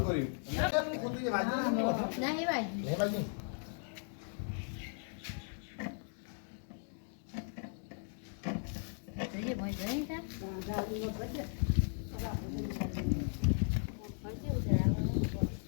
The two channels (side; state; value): right; silent; 53 dB below the other